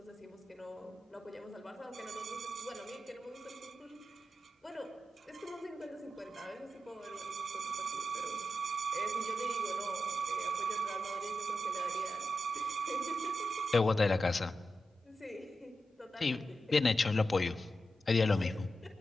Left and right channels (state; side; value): normal; both; correlation 0.89